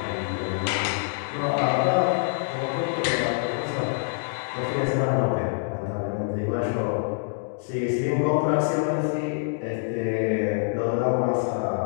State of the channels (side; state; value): right; silent; digital silence